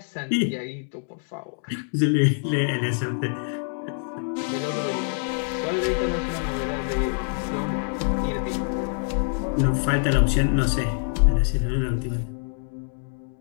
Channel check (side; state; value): right; silent; 60 dB below the other